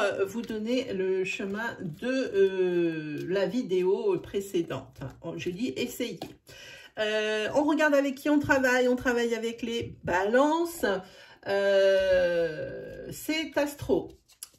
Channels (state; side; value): identical; both; correlation 1.00